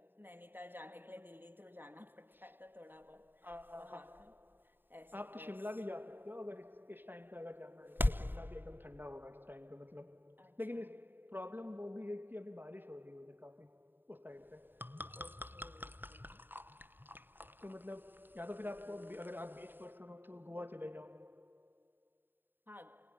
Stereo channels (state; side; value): late; left; 0.095 ms